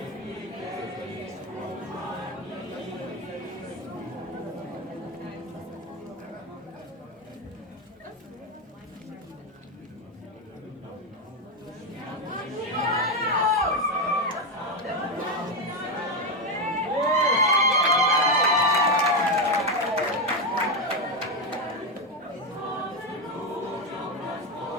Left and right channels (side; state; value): both; normal; correlation 0.09